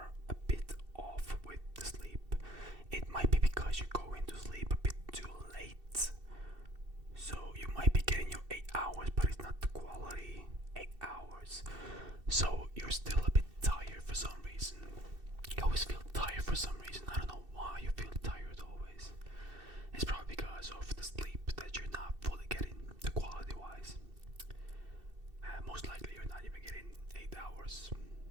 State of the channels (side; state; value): left; late; 2.7 ms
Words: a bit off with the sleep. It might be because you go into sleep a bit too late. So you might be getting your 8 hours, but it's not the quality 8 hours. So you're still a bit tired for some reason. You always feel tired for some reason. I don't know why you feel tired always. It's probably because of the sleep that you're not fully getting, the quality wise. Most likely you're not even getting 8 hours.